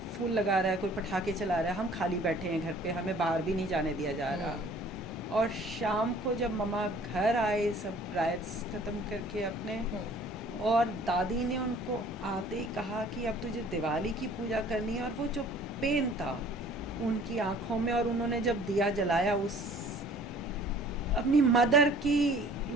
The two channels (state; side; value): normal; both; correlation 0.52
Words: लगा रहा है, कोई पटाखे चला रहा है, हम खाली बैठे हैं घर पे, हमें बाहर भी नहीं जाने दिया जा रहा। और शाम को जब मम्मा घर आए, सब राइट्स ख़त्म करके अपने, और दादी ने उनको आते ही कहा कि अब तुझे दिवाली की पूजा करनी है। और वो जो पेन था उनकी आंखों में, और उन्होंने जब दिया जलाया, उस अपनी मदर की